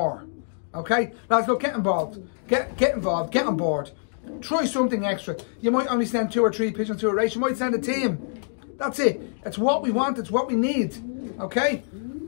Okay? Lads, look, get involved. Get involved. Get on board. Try something extra. You might only send 2 or 3 pigeons to a race. You might send a team. That's it. It's what we want. It's what we need. Okay?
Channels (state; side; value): silent; right; digital silence